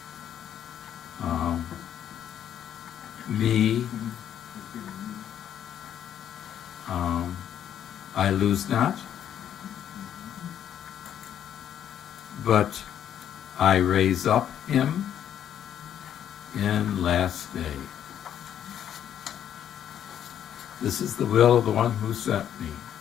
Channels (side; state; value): right; quieter; 9.9 dB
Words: me, I lose not, but I raise up him in last day. This is the will of the one who sent me,